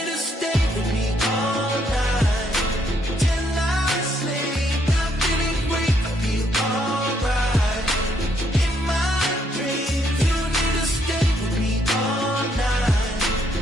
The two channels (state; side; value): normal; both; correlation 0.72